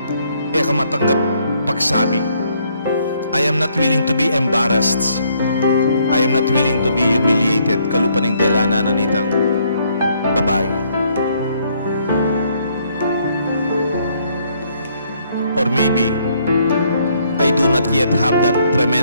kamatanggap pagsabi. I am not willing to be embarrassed. I am not willing to be humiliated. Kalupaning delana na nitang babae. Or maybe, I do not yet have that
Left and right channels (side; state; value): both; inverted; correlation -0.68